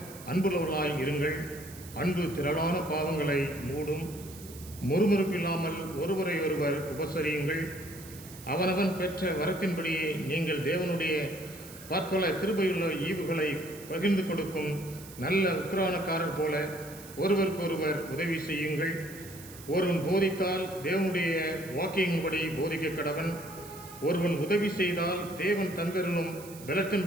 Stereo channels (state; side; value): noise; right; hiss, 17 dB below the sound